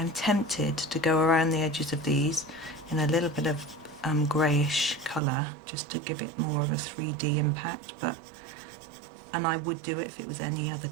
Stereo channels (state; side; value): drops out; left; at 5.2 s